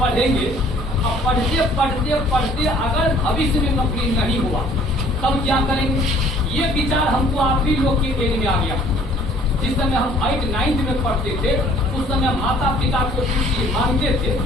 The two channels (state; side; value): normal; both; correlation 0.56